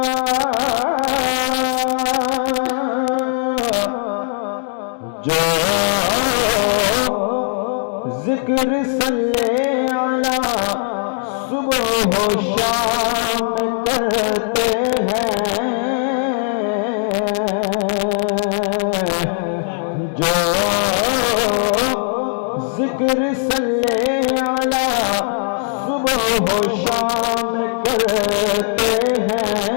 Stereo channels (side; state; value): right; silent; 58 dB below the other